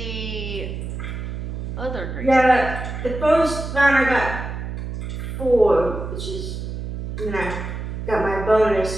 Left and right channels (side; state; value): right; noise; hum, 6 dB below the sound